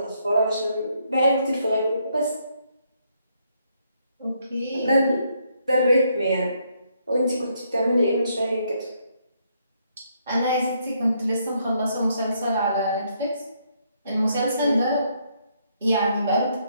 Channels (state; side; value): inverted; both; correlation -0.73